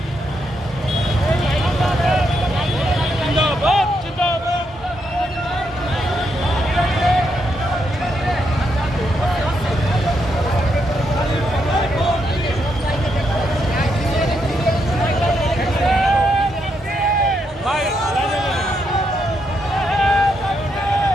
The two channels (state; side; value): normal; both; correlation 0.79